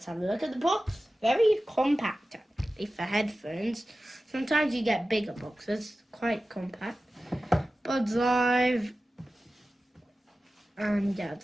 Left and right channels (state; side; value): normal; both; correlation 0.95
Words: have a look at the box. Very compact actually for headphones. Sometimes you get bigger boxes, quite compact. Buds Live, and yeah,